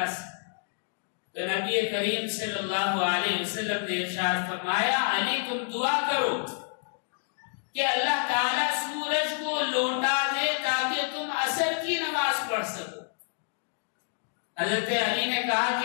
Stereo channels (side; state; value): right; silent; digital silence